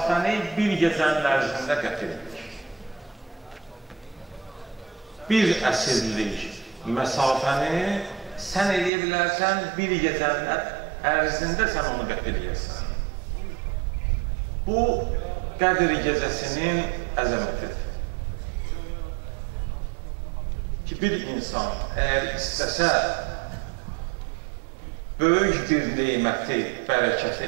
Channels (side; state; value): left; drops out; at 8.9 s